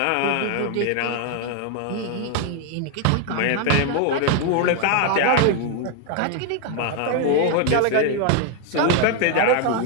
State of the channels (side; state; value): both; different; correlation 0.01